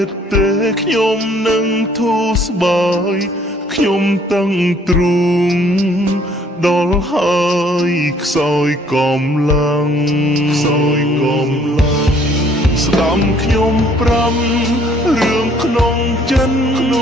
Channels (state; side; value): normal; both; correlation 0.61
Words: ទេខ្ញុំនឹងធូរស្បើយខ្ញុំតឹងទ្រូងដល់ហើយខ្សោយកំឡាំងស្ដាំខ្ញុំប្រាំរឿងក្នុងចិន